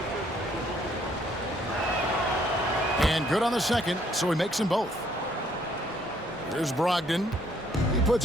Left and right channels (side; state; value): both; normal; correlation 0.66